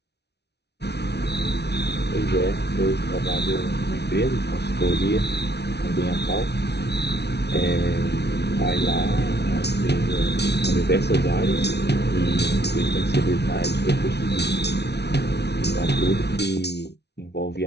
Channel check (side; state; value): right; late; 0.49 ms